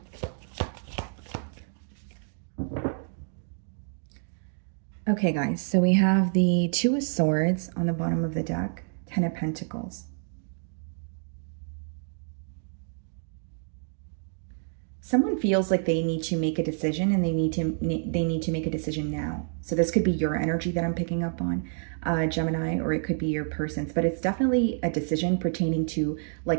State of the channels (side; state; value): left; silent; 59 dB below the other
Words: Okay, guys, so we have the Two of Swords on the bottom of the deck, Ten of Pentacles. Someone feels like they need to make a decision and they need to make a decision now. So this could be your energy that I'm picking up on, Gemini, or it could be your person's, but it's definitely a decision pertaining to